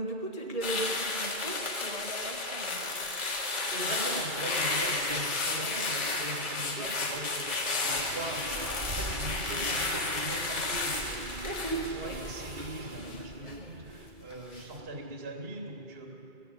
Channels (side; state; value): left; late; 2.3 ms